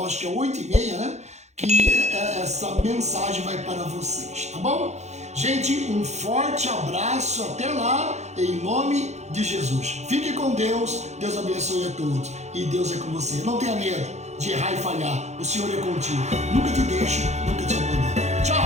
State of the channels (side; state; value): left; late; 0.33 ms